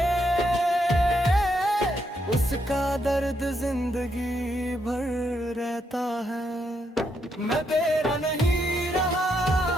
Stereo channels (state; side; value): normal; both; correlation 0.78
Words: उसका दर्द जिंदगी भर रहता है। मैं तेरा नहीं रहा